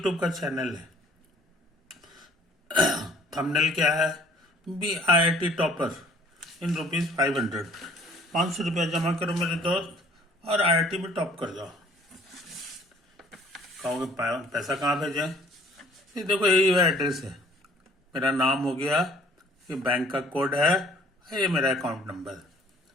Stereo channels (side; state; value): both; normal; correlation 0.56